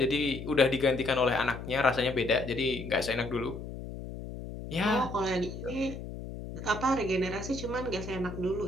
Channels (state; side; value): noise; left; hum, 9 dB below the sound